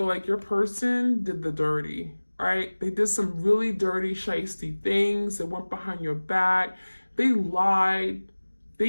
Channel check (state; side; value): inverted; both; correlation -1.00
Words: like your person did the dirty, right? They did some really dirty, shiesty things. They went behind your back. They lied.